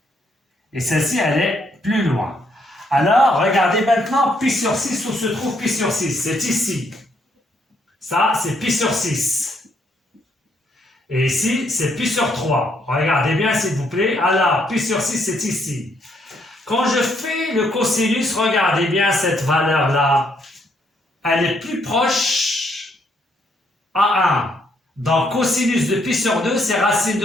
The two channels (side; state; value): both; normal; correlation 0.72